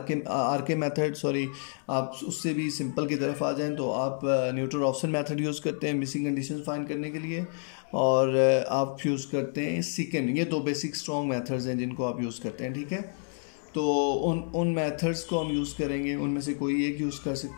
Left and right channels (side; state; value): right; silent; 56 dB below the other